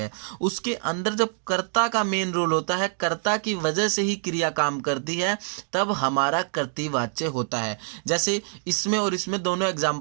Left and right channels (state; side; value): silent; left; digital silence